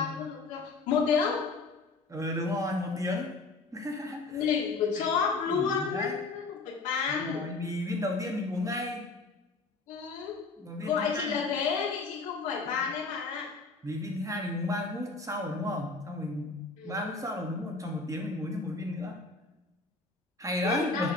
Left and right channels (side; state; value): right; quieter; 3.8 dB